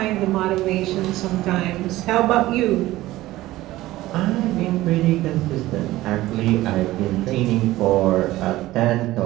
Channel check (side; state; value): left; quieter; 16.7 dB